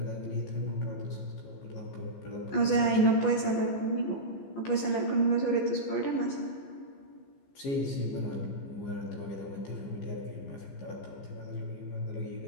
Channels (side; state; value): right; late; 14 ms